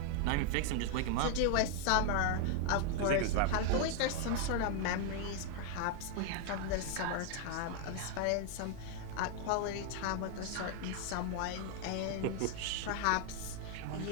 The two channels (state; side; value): different; both; correlation 0.00